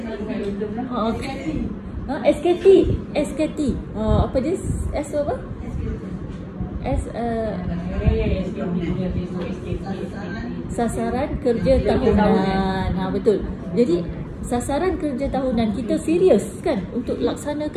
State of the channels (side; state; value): both; identical; correlation 1.00